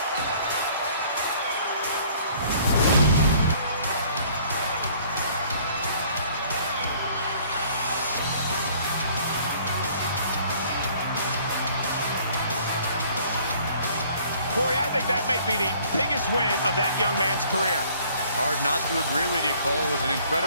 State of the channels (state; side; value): inverted; both; correlation -0.56